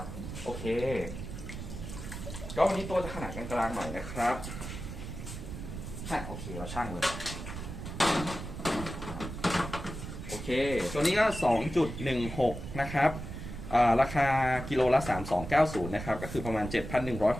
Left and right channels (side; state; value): right; noise; rumble, 8 dB below the sound